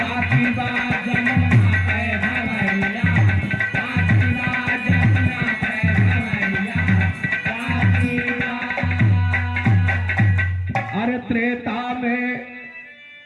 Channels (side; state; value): both; identical; correlation 1.00